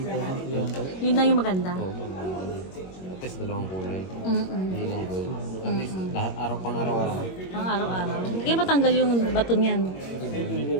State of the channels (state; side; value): late; right; 21 ms